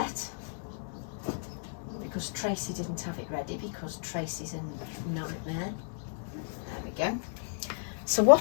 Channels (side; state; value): right; silent; 56 dB below the other